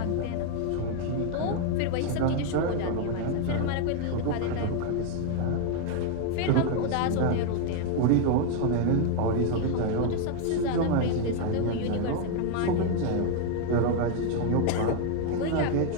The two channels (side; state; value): both; different; correlation 0.00